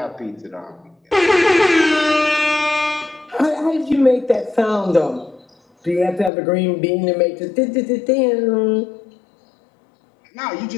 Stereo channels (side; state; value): right; drops out; at 6.3 s